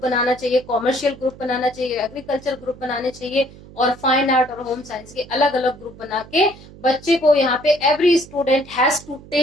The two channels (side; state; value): right; noise; hum, 20 dB below the sound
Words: बनाना चाहिए, कॉमर्शियल ग्रुप बनाना चाहिए, एग्रीकल्चर ग्रुप बनाने चाहिए, और फाइन आर्ट और होम साइंस के अलग अलग ग्रुप बना के बच्चे को यहाँ पे every student has to